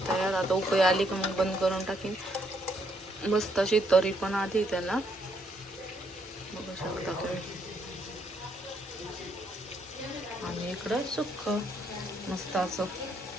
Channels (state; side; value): normal; both; correlation 0.73